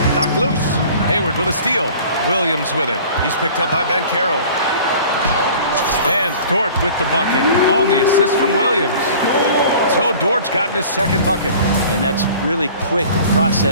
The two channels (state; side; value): inverted; both; correlation -0.46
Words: Knocked loose. Hayward with a steal. Williams with it. He's picked up by Ben Carroll. And Dort with the bucket on the assist from Williams. So Dort's gotten his second bucket. And that's really quick